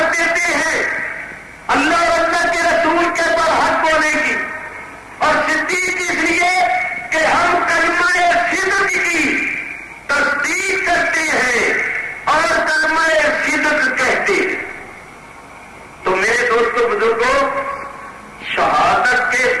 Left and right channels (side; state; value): both; identical; correlation 1.00